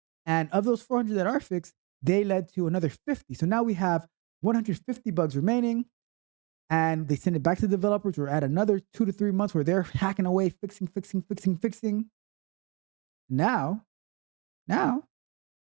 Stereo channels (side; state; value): left; quieter; 29.9 dB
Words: And of those 400 that are fixed, they led to another 50. So now we have 150 bugs remaining. And they send it back to the developers. We're at another 2 to 3 months where they're hacking away, fixing. Now,